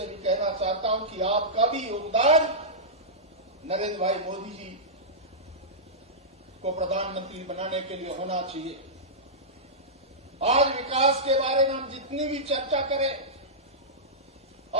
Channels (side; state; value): both; normal; correlation -0.14